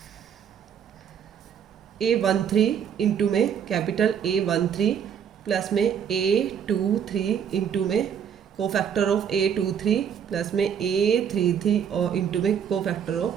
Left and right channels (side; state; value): left; quieter; 8.2 dB